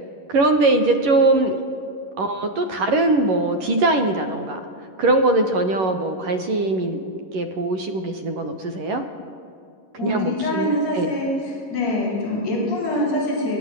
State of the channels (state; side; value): late; left; 11 ms